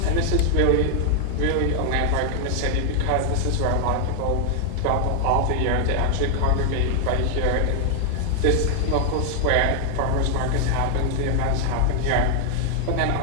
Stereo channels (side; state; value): both; different; correlation 0.00